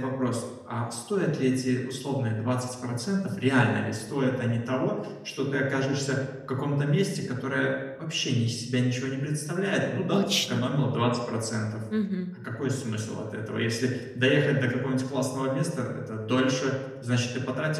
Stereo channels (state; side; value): identical; both; correlation 1.00